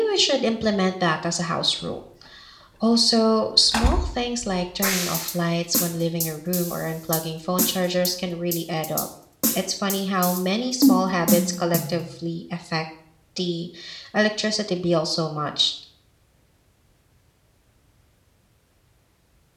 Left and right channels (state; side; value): identical; both; correlation 1.00